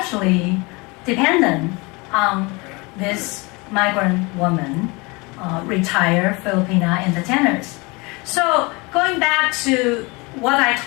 dependent on this migrant woman, retired Filipina entertainers. So going back to what I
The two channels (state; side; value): quieter; right; 26.6 dB